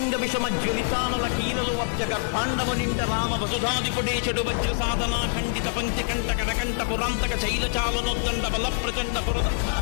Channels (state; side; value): silent; right; digital silence